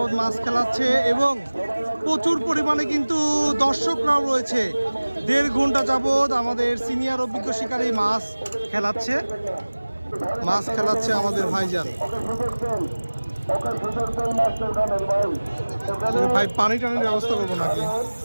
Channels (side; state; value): both; inverted; correlation -1.00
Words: মাছ খেলাচ্ছে এবং প্রচুর পরিমাণে কিন্তু দর্শকরাও রয়েছে। 1.5 ঘন্টা যাবত আমাদের সিনিয়র অভিজ্ঞ শিকারী মাছ খেলাচ্ছে আমাদের ভাইজান। ভাই পানি টানির ব্যবস্থা করবো নাকি?